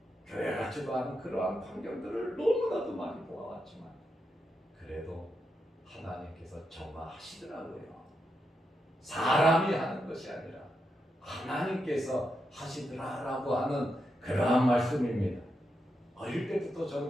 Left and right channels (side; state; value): both; normal; correlation 0.85